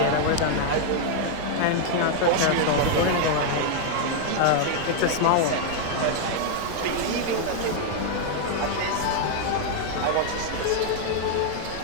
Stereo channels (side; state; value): both; different; correlation 0.00